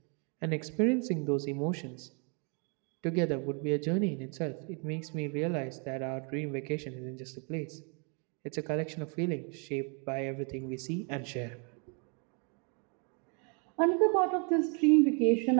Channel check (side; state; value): left; quieter; 36.4 dB